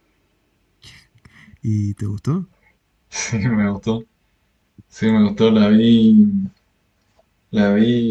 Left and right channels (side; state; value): both; identical; correlation 1.00